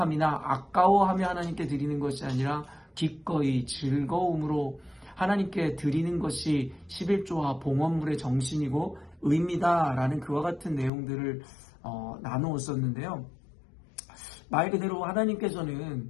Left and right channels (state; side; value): drops out; right; at 10.9 s